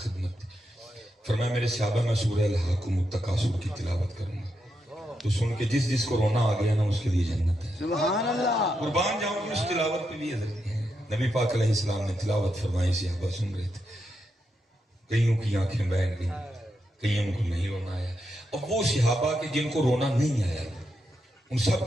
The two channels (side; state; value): both; normal; correlation 0.84